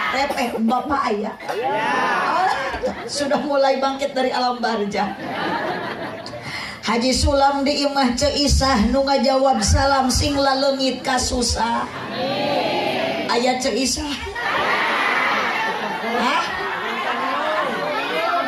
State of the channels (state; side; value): identical; both; correlation 1.00